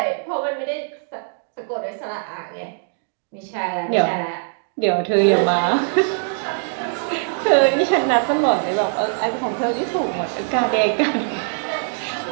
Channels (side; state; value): left; silent; digital silence